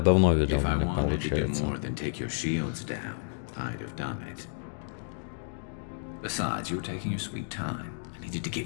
давно видел If I меня, wanted to do получается. more than take your shields down, I'd have done it. Besides, you were taking your sweet time. I needed to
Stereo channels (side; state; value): right; silent; digital silence